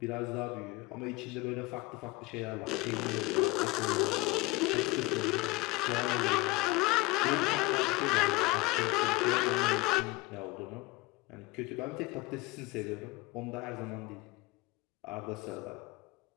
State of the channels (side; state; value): right; quieter; 22.4 dB